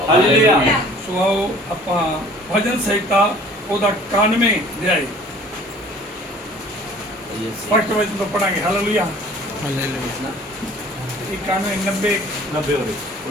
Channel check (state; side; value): normal; both; correlation 0.50